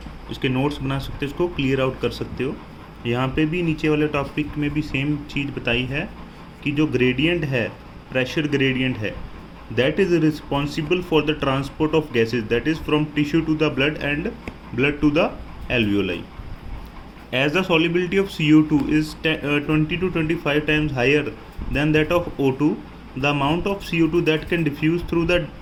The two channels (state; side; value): identical; both; correlation 1.00